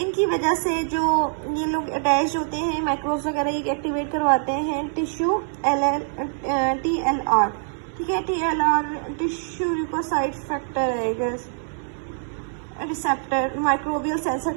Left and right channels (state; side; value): silent; left; digital silence